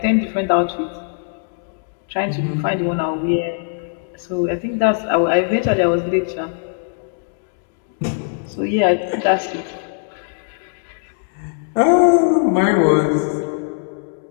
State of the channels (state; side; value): silent; right; 66 dB below the other